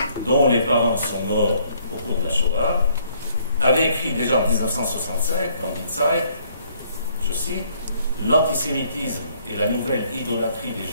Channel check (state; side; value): inverted; both; correlation -0.65